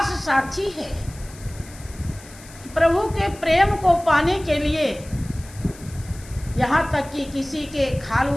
साक्षी है कि प्रभु के प्रेम को पाने के लिए यहाँ तक कि किसी के खाल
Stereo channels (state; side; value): noise; left; hiss, 20 dB below the sound